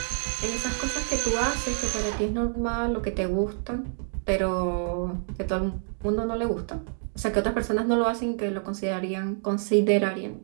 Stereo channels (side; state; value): left; silent; 60 dB below the other